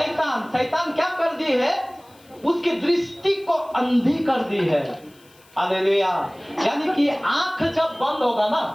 शैतान क्या कर दी है? उसकी दृष्टि को अंधी कर दी है। हालेलुया। यानी कि आंख जब बंद होगा ना,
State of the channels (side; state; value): left; noise; hiss, 29 dB below the sound